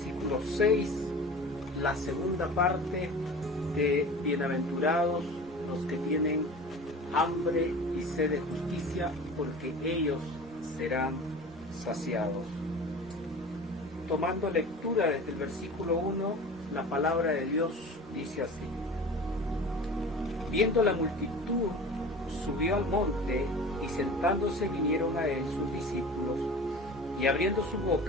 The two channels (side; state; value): both; normal; correlation 0.37